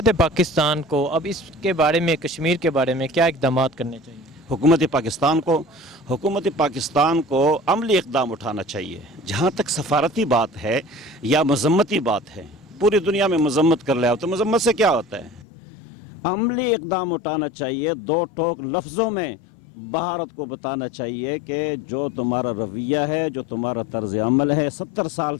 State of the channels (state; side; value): drops out; right; at 15.5 s